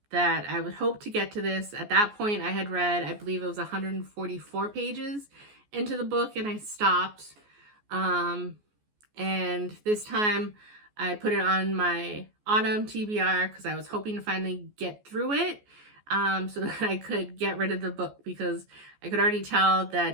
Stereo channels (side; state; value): left; late; 14 ms